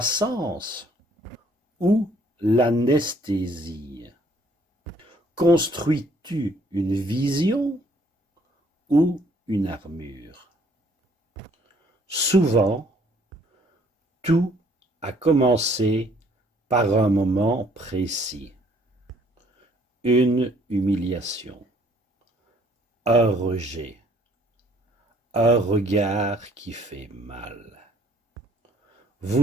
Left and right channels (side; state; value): both; normal; correlation 0.62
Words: ou l'anesthésie? Construis-tu une vision ou une armure? Souvent, tout a commencé par un moment précis. Une humiliation, un rejet, un regard qui fait mal.